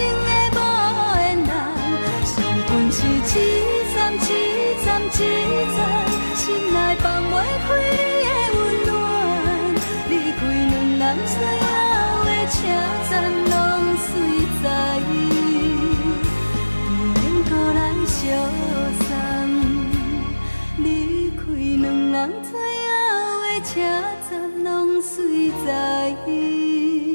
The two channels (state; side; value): inverted; both; correlation -1.00